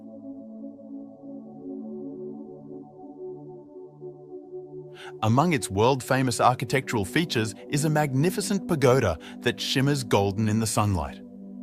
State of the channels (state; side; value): identical; both; correlation 1.00